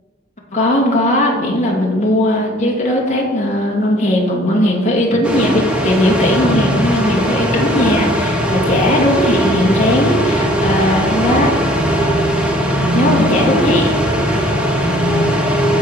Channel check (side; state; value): both; normal; correlation 0.55